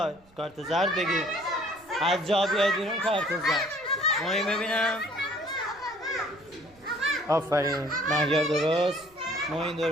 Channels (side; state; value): right; noise; rumble, 29 dB below the sound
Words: کارت زرد بگیر. از جا بیاید بیرون کارت زرد. ماهی ببینم. آفرین. مهیار درست. موین